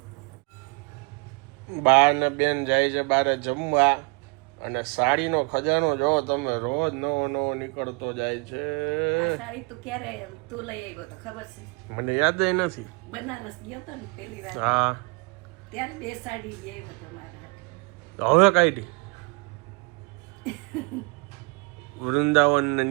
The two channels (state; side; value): quieter; left; 31.7 dB